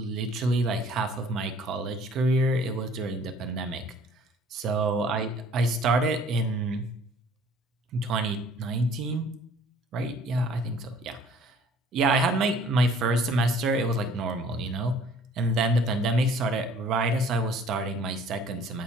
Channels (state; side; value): normal; both; correlation 0.54